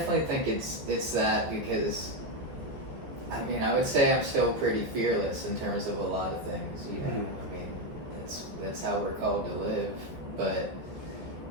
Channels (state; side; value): late; left; 14 ms